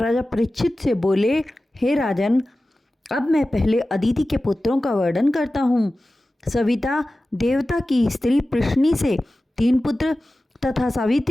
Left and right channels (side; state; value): both; normal; correlation 0.95